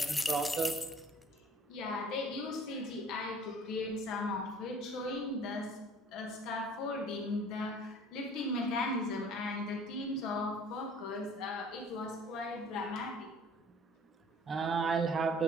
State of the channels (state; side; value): normal; both; correlation 0.51